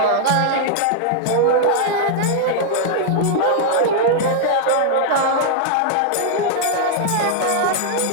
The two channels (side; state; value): both; different; correlation 0.00